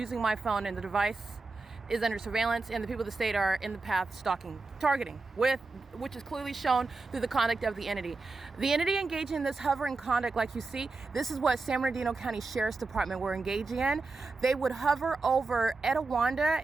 my phone, and the device is under surveillance, and the people of the state are in the path stalking, targeting, which is clearly shown through the conduct of the entity. The entity engaging in this hovering conduct, like you see, this is what San Bernardino County Sheriff's Department were engaging in. They would hover over Etiwanda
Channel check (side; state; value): left; quieter; 3.8 dB